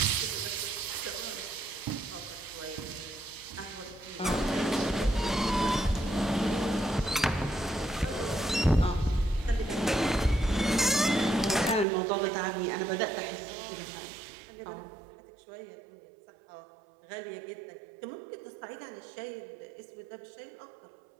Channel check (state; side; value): drops out; left; at 11.9 s